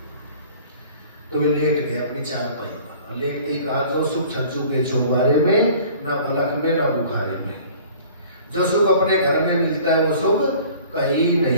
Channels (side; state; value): both; inverted; correlation -0.48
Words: तो वे लेट गए अपनी चारपाई पर। लेटते ही कहा जो सुख छज्जू के चौबारे में, ना पलक में ना बुखारे में। जो सुख अपने घर में मिलता है वो सुख कहीं